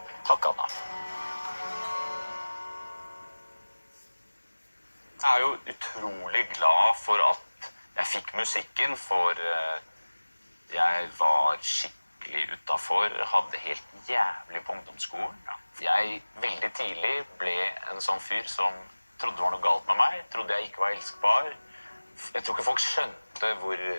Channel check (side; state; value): both; inverted; correlation -1.00